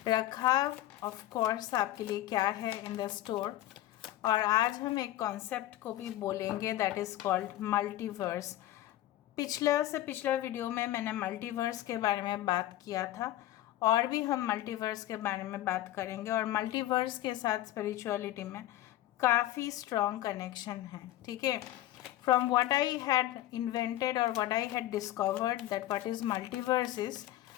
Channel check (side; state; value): right; quieter; 14.5 dB